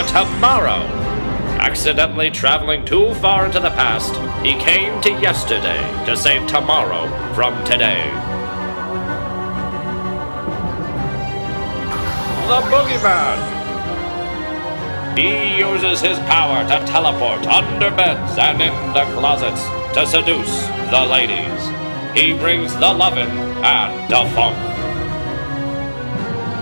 Tomorrow! Accidentally traveling too far into the past, he came to yesterday to save tomorrow from today. The Boogeyman! He uses his power to teleport under beds and into closets to seduce the ladies. He brings the lovin' and the funk.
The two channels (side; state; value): both; inverted; correlation -1.00